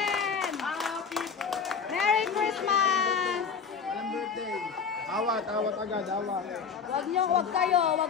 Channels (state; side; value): quieter; right; 6.0 dB